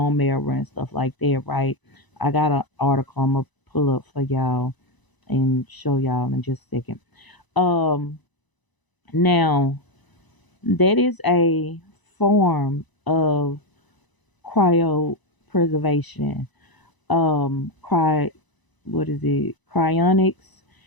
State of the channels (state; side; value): late; right; 1.0 ms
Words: marrow and stuff like that, right? I got an article I'm gonna pull up for y'all and show y'all in just a second. um Now, that is a form of cryopreservation. Cry What is it? Cryonics